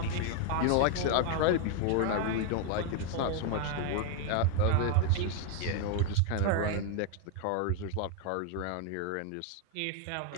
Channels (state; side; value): different; both; correlation 0.01